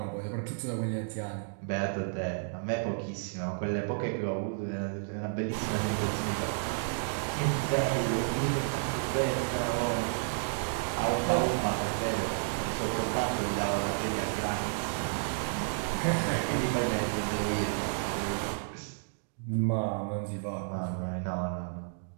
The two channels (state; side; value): silent; left; digital silence